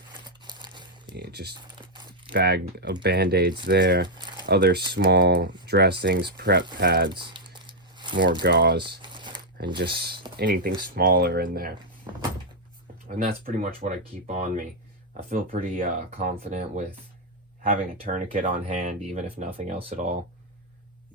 just bag of band-aids there, other small dressings, prep pads, more gauze, and just anything smaller in there. And that's pretty much what I keep on me. I feel pretty confident with having a tourniquet on hand, even if nothing else at all.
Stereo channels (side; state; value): both; normal; correlation -0.02